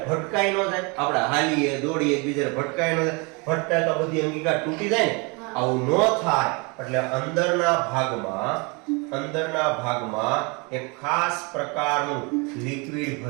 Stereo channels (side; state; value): left; quieter; 30.0 dB